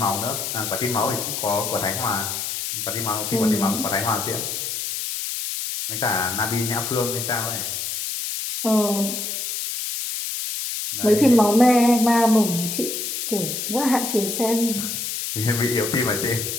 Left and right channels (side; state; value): left; noise; hiss, 4 dB below the sound